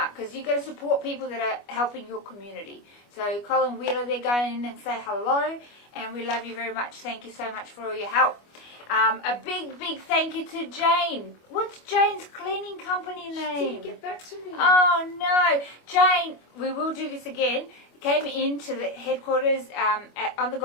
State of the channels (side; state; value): right; late; 25 ms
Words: because you've got to support people that are helping your community. So Colin Wheeler, they're going in and say hello, and we love you very much. Thank you so much for all your help. A big thank you to Jane. What's Jane's cleaning company name? She didn't get back to me. Oh no, Jane, we will do this again. Came into the headquarters on the